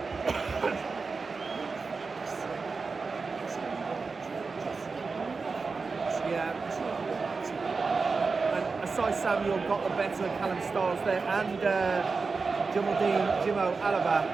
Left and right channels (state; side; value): quieter; left; 4.5 dB